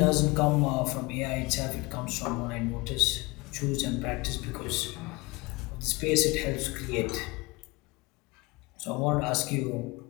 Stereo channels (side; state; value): right; quieter; 24.7 dB